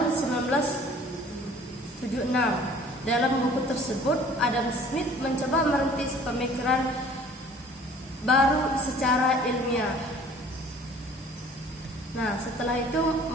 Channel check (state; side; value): normal; both; correlation 0.51